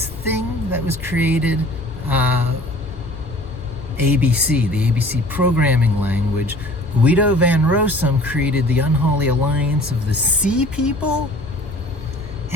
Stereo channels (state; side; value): normal; both; correlation 0.47